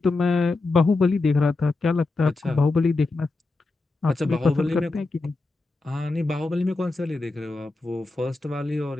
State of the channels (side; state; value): right; quieter; 3.3 dB